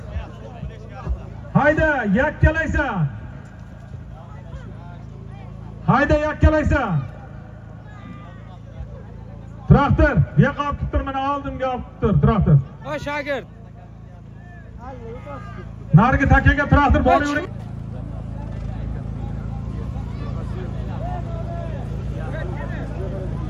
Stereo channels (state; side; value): identical; both; correlation 1.00